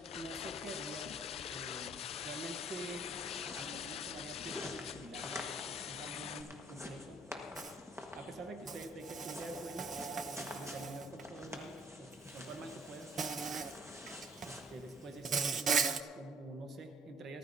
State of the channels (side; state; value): both; normal; correlation 0.60